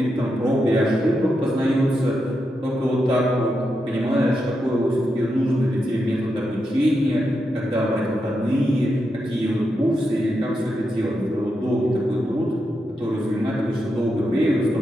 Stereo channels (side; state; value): both; normal; correlation 0.85